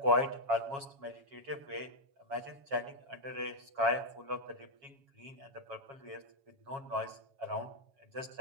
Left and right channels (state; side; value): late; left; 7.3 ms